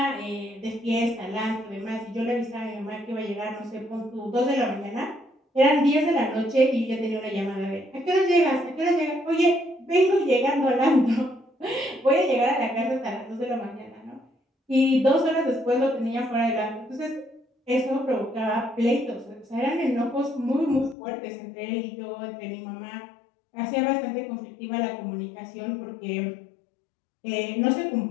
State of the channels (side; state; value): right; drops out; at 21.0 s